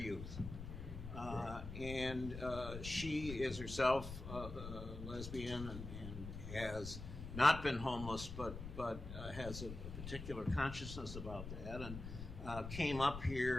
And she is herself lesbian and has not been homeless, but has a particular consciousness about that, and came up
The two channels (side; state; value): left; noise; rumble, 8 dB below the sound